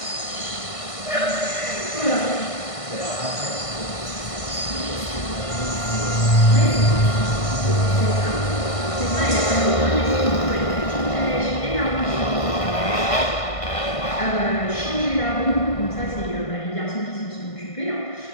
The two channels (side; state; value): right; late; 1.5 ms